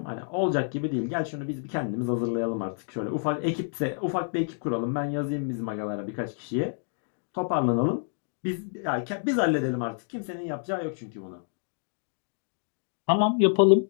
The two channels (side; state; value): right; silent; digital silence